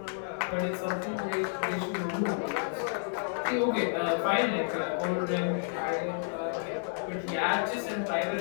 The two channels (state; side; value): silent; right; 57 dB below the other